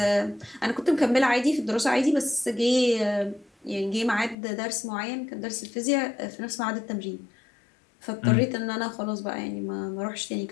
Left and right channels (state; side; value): drops out; right; at 4.4 s